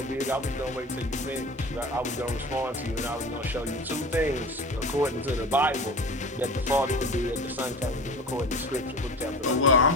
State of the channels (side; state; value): both; normal; correlation 0.35